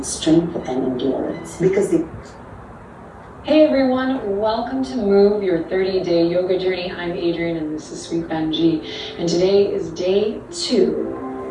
strength and endurance because they... Hey everyone, welcome to Move, your 30-day yoga journey. I'm Adrienne and this is Sweet Benji. And today is day 2.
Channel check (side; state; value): both; identical; correlation 1.00